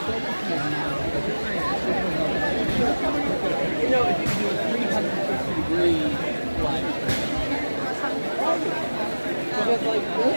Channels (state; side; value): inverted; both; correlation -1.00